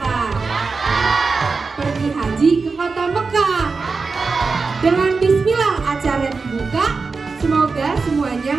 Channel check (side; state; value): left; quieter; 4.5 dB